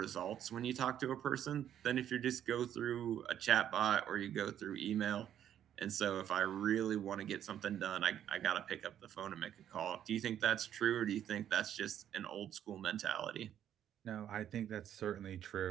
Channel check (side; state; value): left; quieter; 10.3 dB